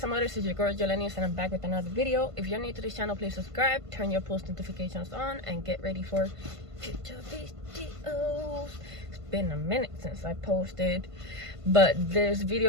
others. It's your girl Jelenius, and I'm back with another video. If you're new to this channel, please subscribe, turn your post notifications on, and get ready for future videos. It's been a minute since I posted, but this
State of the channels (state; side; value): late; left; 1.5 ms